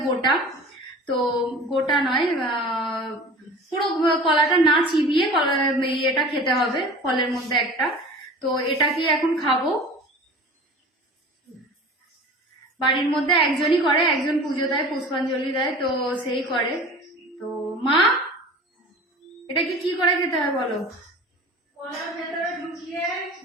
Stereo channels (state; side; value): normal; both; correlation 0.39